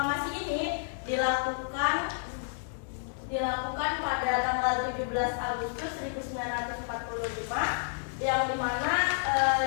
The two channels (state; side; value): silent; right; digital silence